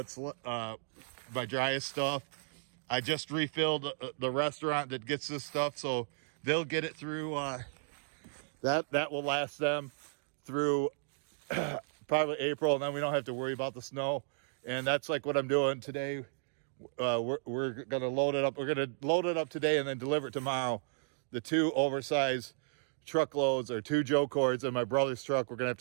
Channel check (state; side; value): silent; left; digital silence